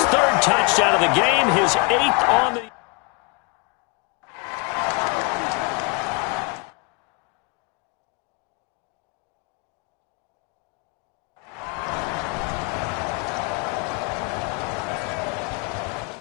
3rd touchdown of the game, his 8th on the...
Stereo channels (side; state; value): right; quieter; 30.8 dB